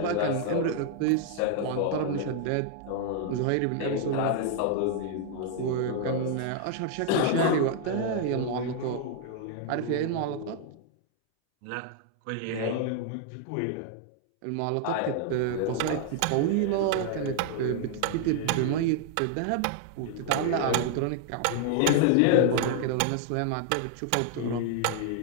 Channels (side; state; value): both; different; correlation -0.01